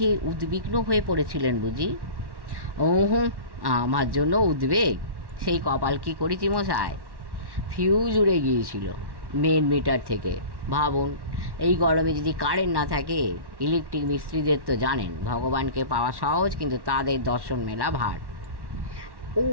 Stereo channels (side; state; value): left; late; 1.1 ms